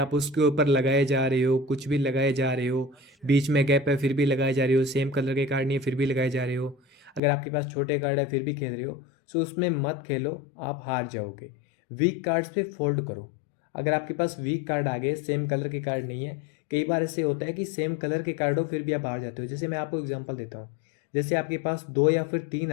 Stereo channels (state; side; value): drops out; right; at 7.2 s